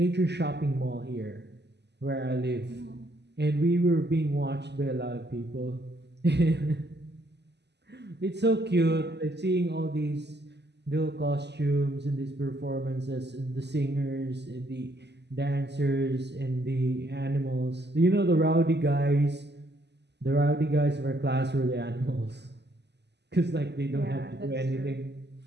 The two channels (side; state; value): left; late; 0.50 ms